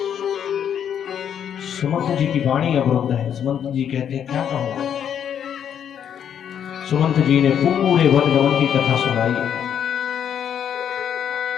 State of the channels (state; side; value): quieter; right; 8.9 dB